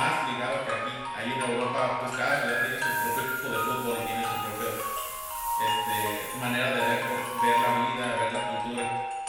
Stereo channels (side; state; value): both; identical; correlation 1.00